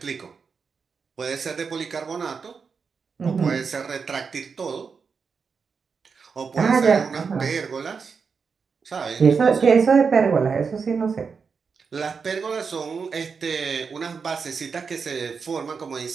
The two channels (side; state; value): left; quieter; 5.5 dB